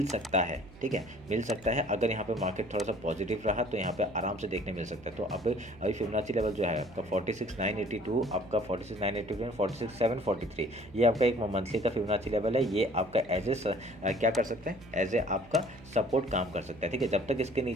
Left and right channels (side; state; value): right; noise; hum, 22 dB below the sound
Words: सकता है, ठीक है, मिल सकता है। अगर यहाँ पे मार्केट थोड़ा सा पॉजिटिव रहा तो यहाँ पे आराम से देखने मिल सकता है। तो अभी फिबोनाची लेवल जो है आपका 46,982, आपका 46,982, 46,743, ये आपका एक मंथली का फिबोनाची लेवल है। ये आपका एज ए क्या कर सकते हैं, एज ए आपका सपोर्ट काम कर सकता है, ठीक है। जब तक इसके